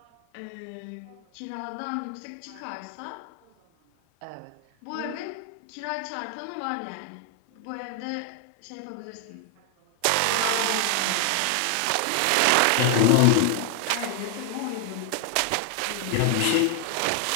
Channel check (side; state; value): both; different; correlation 0.00